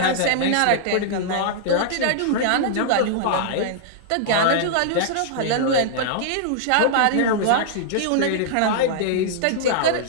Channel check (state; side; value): different; both; correlation -0.01